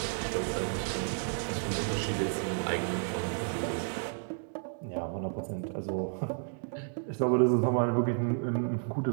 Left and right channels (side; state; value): left; silent; digital silence